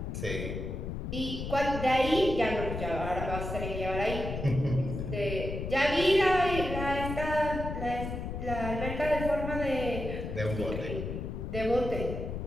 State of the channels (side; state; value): left; noise; rumble, 5 dB below the sound